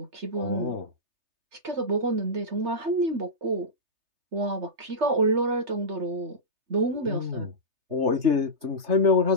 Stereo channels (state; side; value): late; left; 3.3 ms